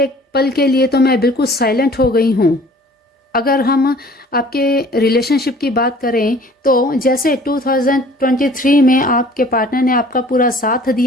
पल के लिए तो मैं बिल्कुल साइलेंट हो गई हूं। अगर हम आपके रिलेशनशिप की बात करें तो जैसे 2023 में आपके पार्टनर ने आपका पूरा साथ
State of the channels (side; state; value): both; normal; correlation 0.51